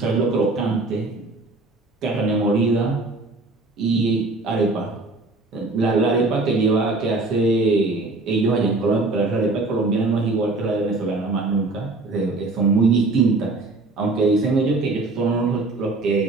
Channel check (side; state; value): left; quieter; 3.3 dB